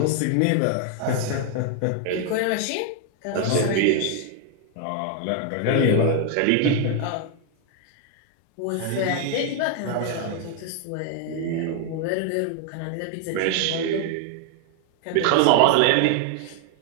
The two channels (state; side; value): different; both; correlation 0.00